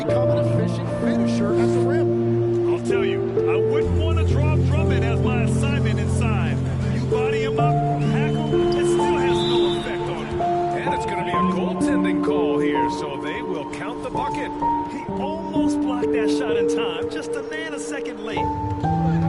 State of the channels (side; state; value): both; identical; correlation 1.00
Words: an efficient finisher at the rim. I'll tell you, I wouldn't want to drop Drummond as my assignment inside. You body him up, tackle, it still has no effect on him. And it's going to be a goaltending call here, so they will count the bucket. He almost blocked that shot in time, just a nanosecond late.